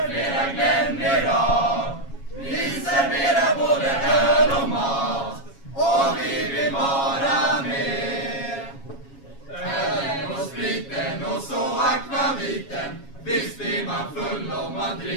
flera Glenn i rad. Vi serverar både öl och mat, och vi vill vara med. Ölen och spriten och så akvaviten, visst blir man full om man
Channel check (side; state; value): right; late; 7.3 ms